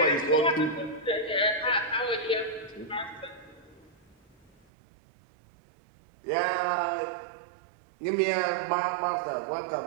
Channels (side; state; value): left; drops out; at 4.5 s